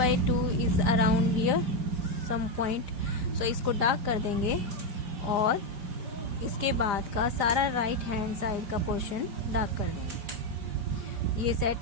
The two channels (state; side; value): late; left; 4.9 ms